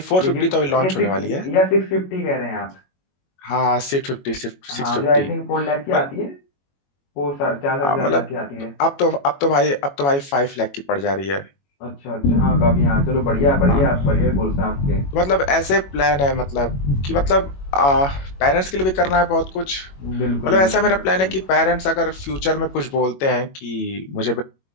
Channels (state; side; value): late; right; 21 ms